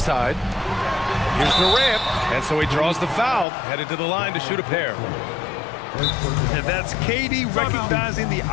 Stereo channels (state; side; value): drops out; right; at 3.5 s